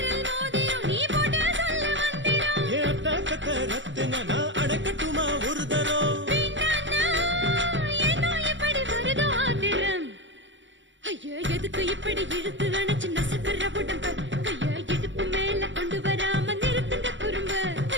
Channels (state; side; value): late; left; 0.54 ms